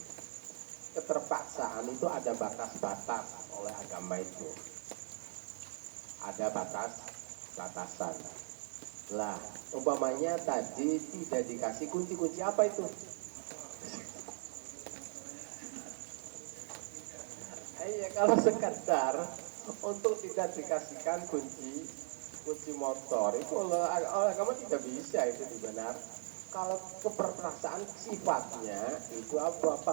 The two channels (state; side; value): silent; left; digital silence